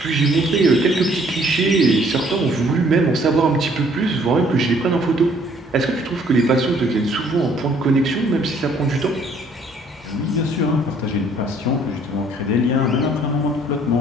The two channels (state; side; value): normal; both; correlation 0.61